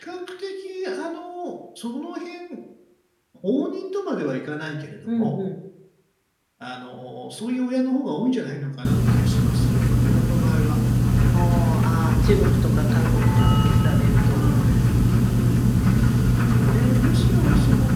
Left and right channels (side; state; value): both; identical; correlation 1.00